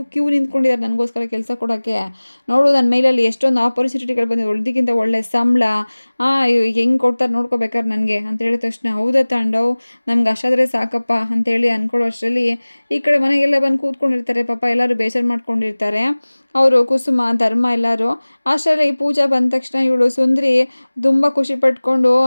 ಕ್ಯೂ ನಿಂತ್ಕೊಂಡಿದ್ದಾರೆ ನನಗೋಸ್ಕರ ಕೆಲಸ ಕೊಡೋಕ್ಕೆ, ನೋಡು ನನ್ನ ಮೇಲಲ್ಲಿ ಎಷ್ಟೊಂದು ಆಪರ್ಚುನಿಟಿಗಳು ಬಂದಿದೆ, ಒಳ್ದಿಗಿಂತ ಒಳ್ಳೆ ಸಂಬಳ, ಹೆಂಗೆ ಕೊಡ್ತಾರೆ ನೋಡ್ಕೋಬೇಕಾದ್ರೆ ನನಗೆ ಅಂತ ಹೇಳಿದ ತಕ್ಷಣ, ಹೌದಾ ತಾಂಡವ್, ನಮ್ಗೆ ಅಷ್ಟಾದರೆ ಸಾಕಪ್ಪ ಅಂತೇಳಿ ಅಂದ್ಕೊಳ್ಳೋ ಅಷ್ಟರಲ್ಲಿ ಈ ಕಡೆ ಮನೆಗೆಲ್ಲ ಬಂದು ಕೂತ್ಕೊಂಡಿರ್ತಾರೆ. ಪಾಪ ಎಲ್ಲರೂ ಬೇಜಾರು ಮಾಡ್ಕೊಂಡಿರ್ತಾರೆ, ಅವರು ಕುಸುಮ ಧರ್ಮ ಎಲ್ಲರೂ. ಅಷ್ಟರಲ್ಲಿ ಈ ಪೂಜಾ ಬಂದ ತಕ್ಷಣ ಇವಳು ಸುಂದ್ರಿ ತುಂಬ ಖುಷಿ ಪಟ್ಕೊಂಡು,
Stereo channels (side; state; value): both; inverted; correlation -1.00